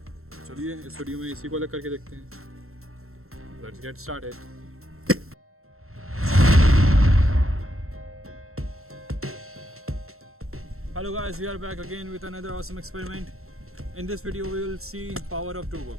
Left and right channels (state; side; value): late; left; 0.62 ms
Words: चलिए इस वीडियो में इसी को अलग करके देखते हैं। Let's get started. Hello guys, we are back again with another awesome experiment. In this video we will see power of two